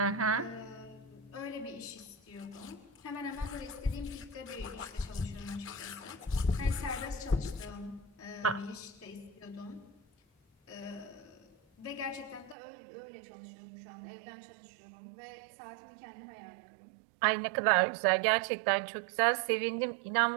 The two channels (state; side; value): drops out; left; at 12.6 s